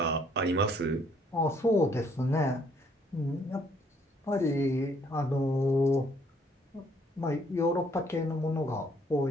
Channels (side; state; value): both; normal; correlation 0.65